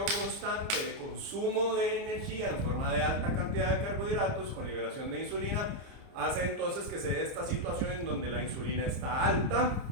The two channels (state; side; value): late; left; 30 ms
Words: constante de consumo de energía en forma de alta cantidad de carbohidratos con liberación de insulina hace entonces que se dé esta situación en donde la insulina está alta